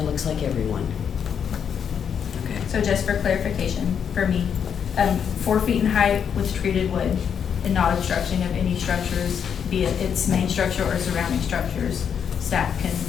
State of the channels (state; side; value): quieter; right; 7.7 dB